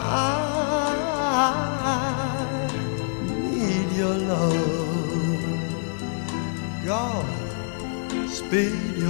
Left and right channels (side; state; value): right; silent; digital silence